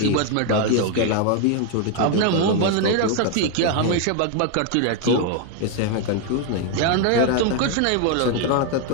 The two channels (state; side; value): different; both; correlation 0.00